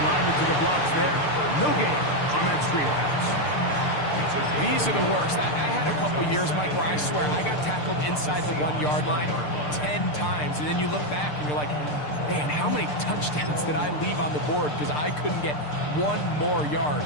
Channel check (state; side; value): late; right; 6.7 ms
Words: to the blocks there. No gain on that screen pass. These are the worst. I had a couple years, Mike, where I swear I got tackled inside the 1-yard line 10 times. And then you look back and you're like, man, how many touchdowns did I leave on the board because I couldn't get 1 more yard?